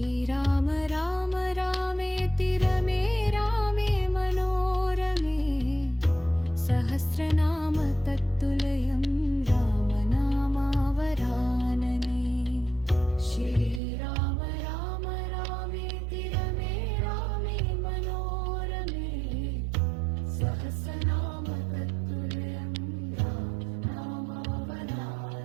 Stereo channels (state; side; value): drops out; left; at 13.8 s